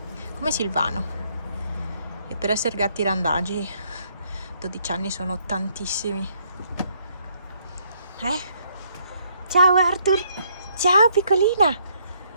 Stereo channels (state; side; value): inverted; both; correlation -0.70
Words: Come Silvano. E per essere gatti randagi 12 anni sono tantissimi. Ciao Arthur. Ciao piccolina.